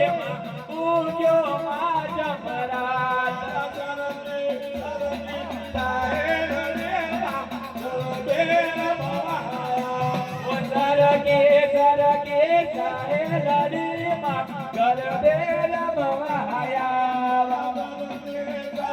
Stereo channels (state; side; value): identical; both; correlation 1.00